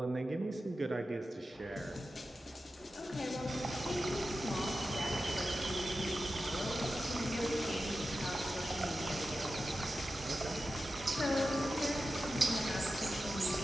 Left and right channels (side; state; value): both; normal; correlation 0.93